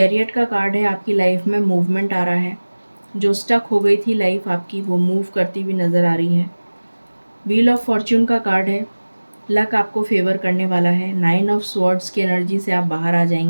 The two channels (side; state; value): both; inverted; correlation -1.00